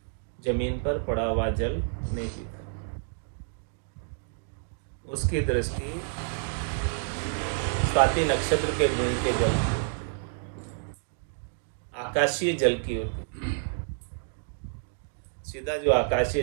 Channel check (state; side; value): silent; left; digital silence